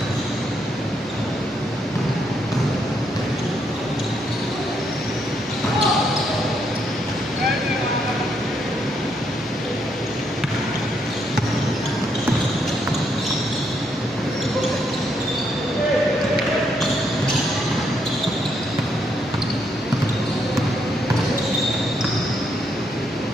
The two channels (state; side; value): normal; both; correlation 0.76